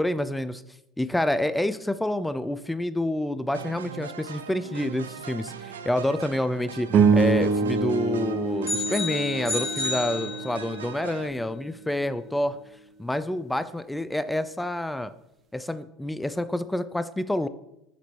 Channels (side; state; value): both; normal; correlation 0.74